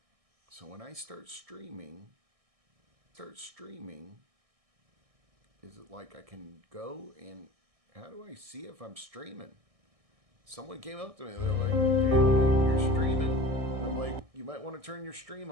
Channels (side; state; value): left; late; 1.6 ms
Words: So when I start streaming, is it like I can go and how do I see if I'm streaming? Someone came up to me, they're like, dude, you're streaming. And I'm like, you might want to turn your stream